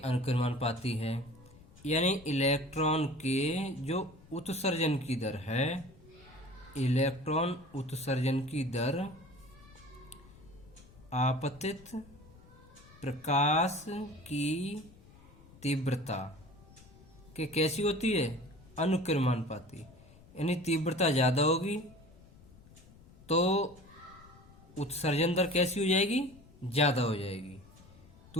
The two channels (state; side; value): noise; left; rumble, 23 dB below the sound